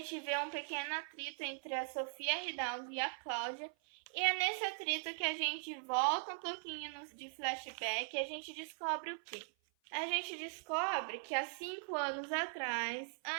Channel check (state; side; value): silent; left; 51 dB below the other